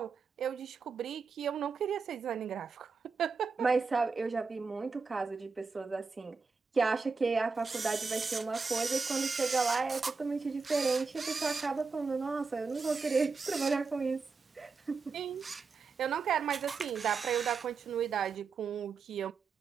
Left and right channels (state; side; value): quieter; left; 4.8 dB